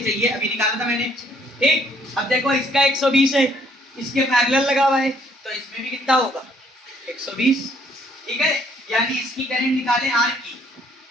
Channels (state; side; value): normal; both; correlation 0.64